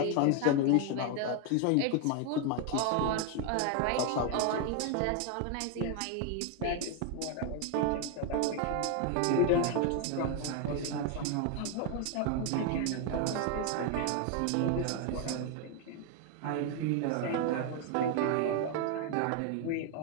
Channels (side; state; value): both; different; correlation 0.01